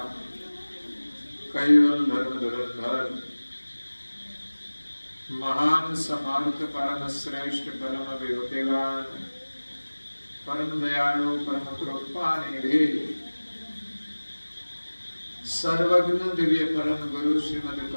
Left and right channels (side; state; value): both; inverted; correlation -1.00